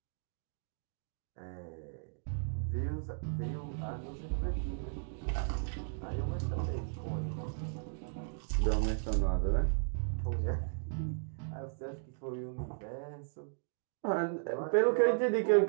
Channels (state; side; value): silent; left; digital silence